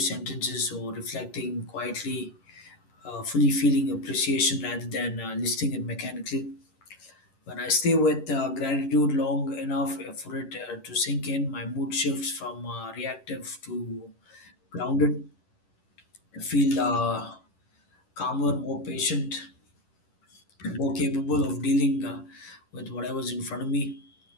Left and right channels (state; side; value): late; right; 10 ms